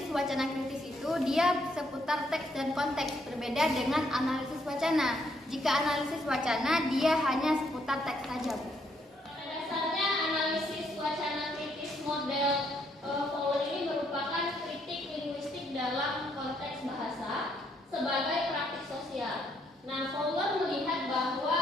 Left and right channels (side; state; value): both; normal; correlation 0.72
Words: wacana kritis itu dia seputar teks dan konteks, berbeda dengan analisis wacana. Jika analisis wacana dia hanya seputar teks saja. Pada dasarnya analisis wacana kritis model Fowler ini merupakan kritik linguistik dalam konteks bahasa sebagai praktik sosial. Nah, Fowler melihat